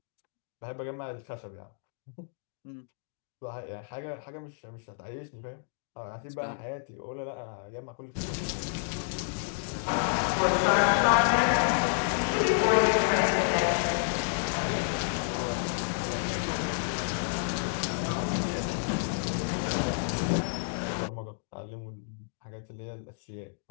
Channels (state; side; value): silent; right; digital silence